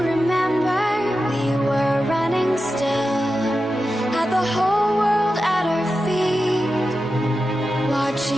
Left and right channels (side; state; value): both; normal; correlation 0.91